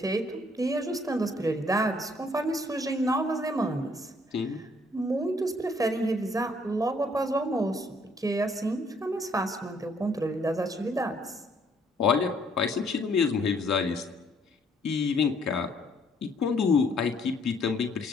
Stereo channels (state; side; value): normal; both; correlation 0.65